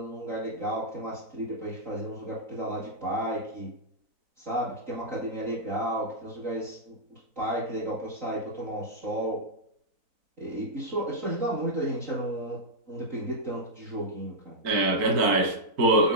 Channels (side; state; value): left; late; 4.0 ms